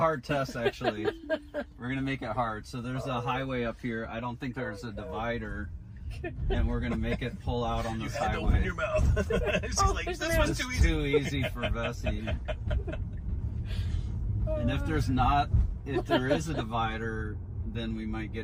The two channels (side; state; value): both; identical; correlation 1.00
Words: test, actually. We're going to make it hard. So there's a highway up here. I don't think there's a divider. And we're going to make it pull out on this highway. You had to open your mouth. She's like, this was too easy. Too easy for Bessie. And if there is a divider, then we might